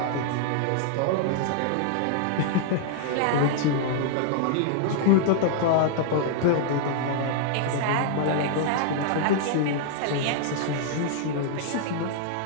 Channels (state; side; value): different; both; correlation -0.01